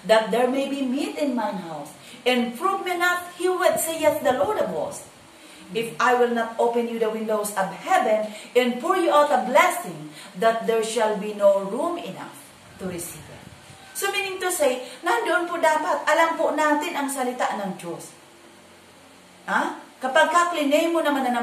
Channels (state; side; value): identical; both; correlation 1.00